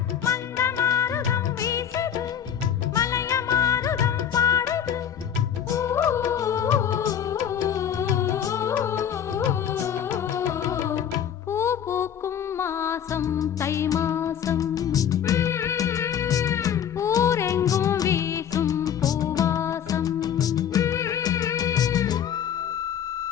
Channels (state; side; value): quieter; right; 9.0 dB